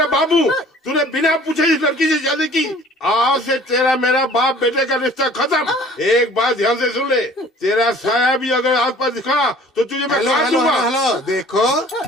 बाबू, तूने बिना पूछे इस लड़की से शादी की। आज से तेरा मेरा बाप बेटे का रिश्ता खत्म। एक बात ध्यान से सुन ले, तेरा साया भी अगर आस पास दिखा तो तुझे मैं काट दूंगा। हेलो, देखो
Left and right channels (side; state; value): both; normal; correlation 0.50